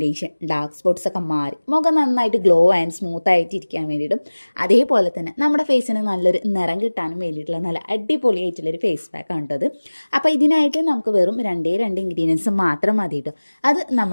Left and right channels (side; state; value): both; inverted; correlation -1.00